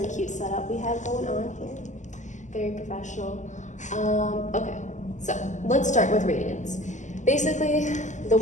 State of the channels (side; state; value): right; late; 0.35 ms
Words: cute setup we have going on here. Very professional. Okay, so let's start with radians. Basically, the